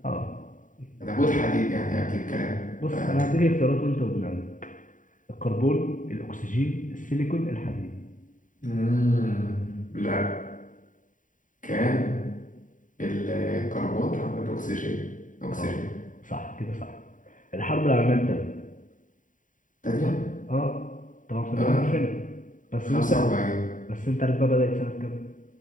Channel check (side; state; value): right; late; 0.38 ms